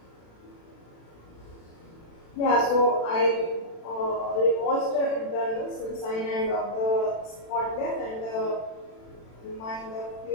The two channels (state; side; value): late; right; 36 ms